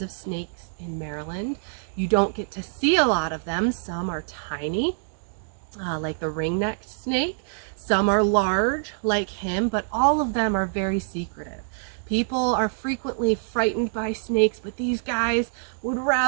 of snakes in Maryland. You don't get to see a lot of them. Some are tiny, like the ring-necked snake. Some are large, like him, but all of them are very secretive. People are frequently frightened by snakes, but these guys would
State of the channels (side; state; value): left; silent; digital silence